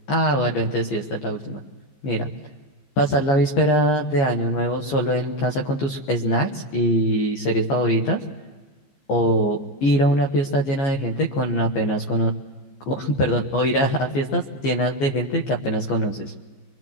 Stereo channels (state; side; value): late; right; 14 ms